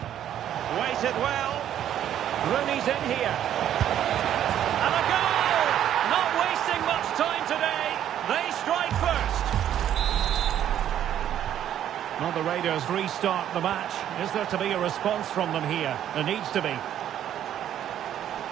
Waited well. Rooney's in here. And a goal! Not wasting much time today. They strike first. Well, the Raiders restart the match. Is there to be a response from them here? There needs to be.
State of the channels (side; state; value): left; quieter; 10.7 dB